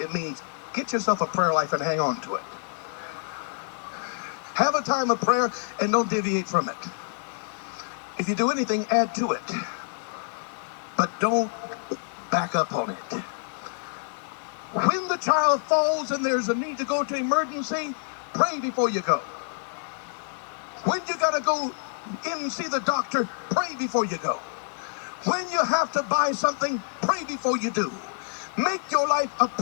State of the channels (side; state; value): right; silent; digital silence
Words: means get yourself a prayer life and hang on to it. Have a time of prayer and don't deviate from it. If you do anything, add to it. But don't back up on it. When the child falls and there's a need to go to emergency, pray before you go. When you got to go in and see the doctor, pray before you go. When you have to buy something, pray before you do. Make your life a